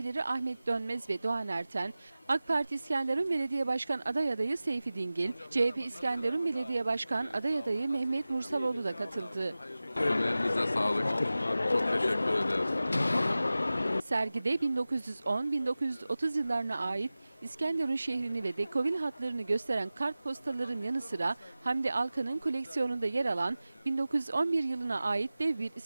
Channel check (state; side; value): inverted; both; correlation -0.96